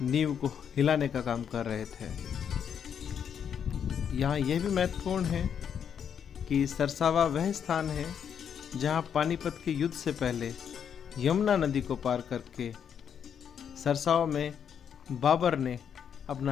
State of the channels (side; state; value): right; quieter; 8.0 dB